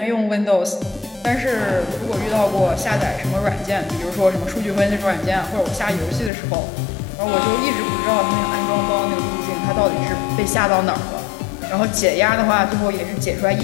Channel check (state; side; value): drops out; right; at 6.3 s